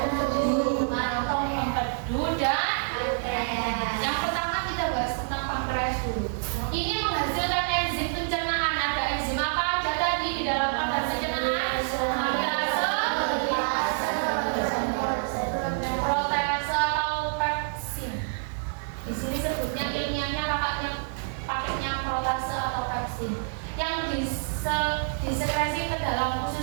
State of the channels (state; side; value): silent; left; digital silence